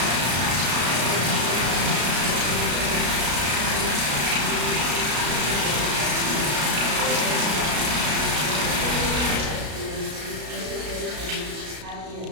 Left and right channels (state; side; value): late; left; 33 ms